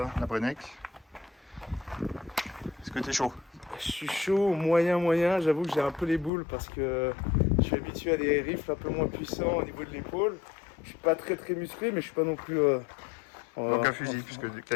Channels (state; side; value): drops out; right; at 6.3 s